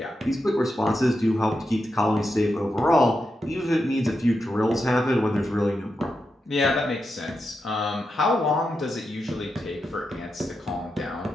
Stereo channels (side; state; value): both; normal; correlation 0.87